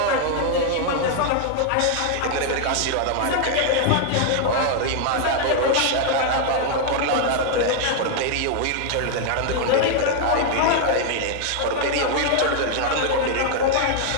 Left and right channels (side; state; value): both; different; correlation 0.00